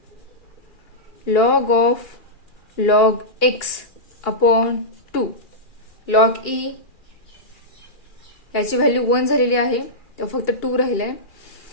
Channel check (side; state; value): right; late; 2.8 ms